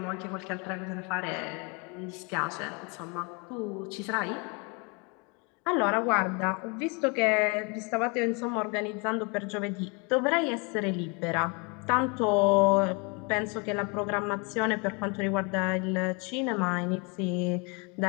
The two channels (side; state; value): right; quieter; 31.7 dB